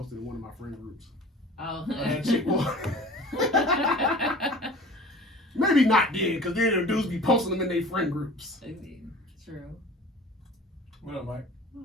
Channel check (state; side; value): normal; both; correlation 0.42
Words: in one of my friend groups. Oh. That chick maybe not then, because then the dudes be posting them in their friend groups. True. What up, Mike? My